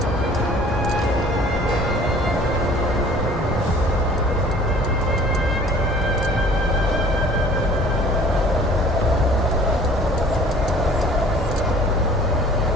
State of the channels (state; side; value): normal; both; correlation 0.50